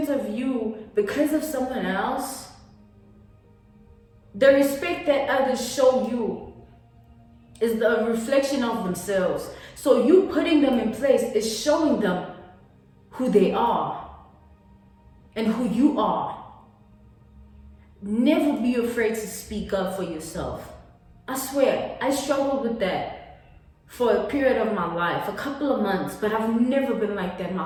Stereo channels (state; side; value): identical; both; correlation 1.00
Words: of you because of someone else. The respect that others show you is the reflection of themselves. So you putting them in place is showing them who they are and who you are. Never be afraid to speak up for yourself. I swear, I struggled with that for a period of my life, a couple of months, but I've never been like that my